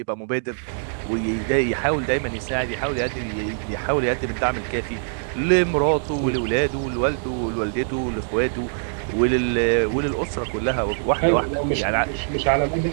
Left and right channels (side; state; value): left; silent; digital silence